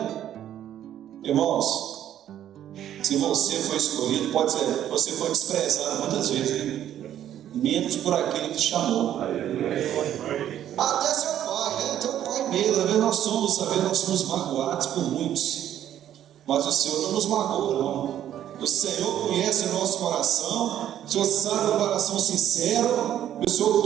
Irmãos, se você foi escolhido, pode ser, você foi desprezado muitas vezes, né? Menos por aquele que te chamou. Até seu pai, teu pai mesmo. Às vezes nós somos magoados por muitos, mas o Senhor não nos magoa, não. O Senhor conhece o nosso coração, o Senhor sabe o coração sincero, e o Senhor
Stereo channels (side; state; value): left; quieter; 11.0 dB